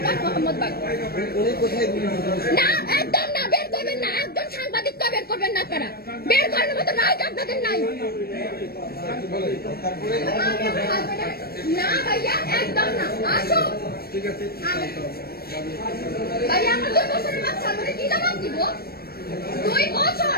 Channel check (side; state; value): right; late; 0.44 ms